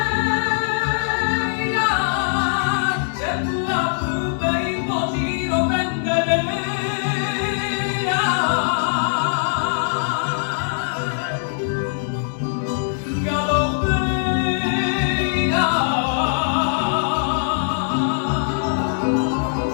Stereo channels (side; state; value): right; silent; digital silence